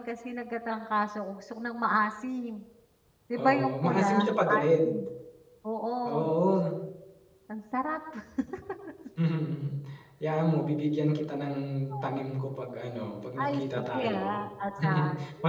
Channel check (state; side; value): identical; both; correlation 1.00